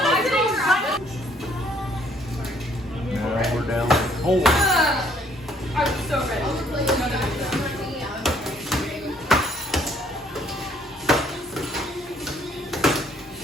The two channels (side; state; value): both; normal; correlation 0.64